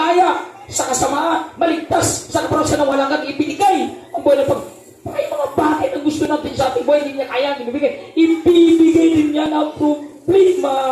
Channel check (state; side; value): identical; both; correlation 1.00